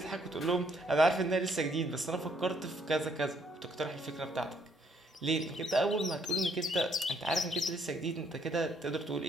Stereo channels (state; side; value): normal; both; correlation 0.69